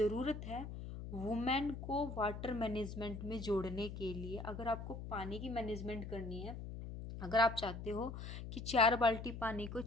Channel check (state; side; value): noise; left; hum, 8 dB below the sound